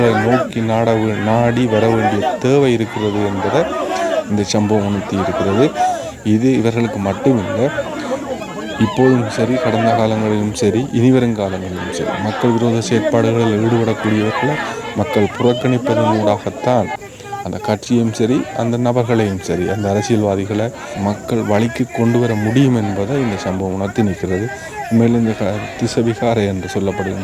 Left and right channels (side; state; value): both; identical; correlation 1.00